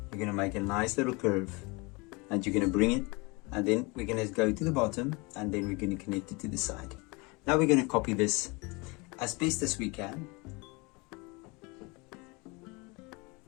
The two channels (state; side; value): quieter; right; 27.2 dB